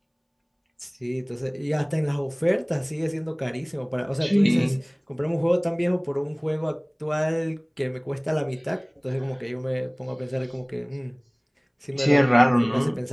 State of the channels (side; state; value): both; identical; correlation 1.00